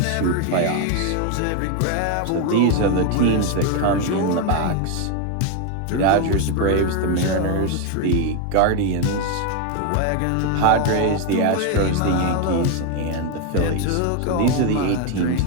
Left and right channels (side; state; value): both; different; correlation 0.01